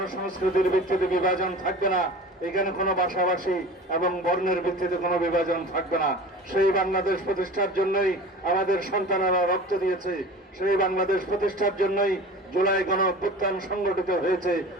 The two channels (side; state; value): both; normal; correlation 0.37